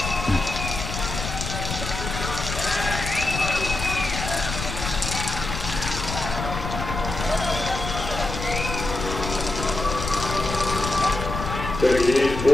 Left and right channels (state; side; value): noise; left; rumble, 5 dB below the sound